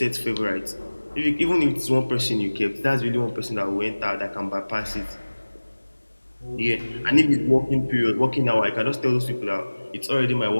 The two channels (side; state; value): both; inverted; correlation -1.00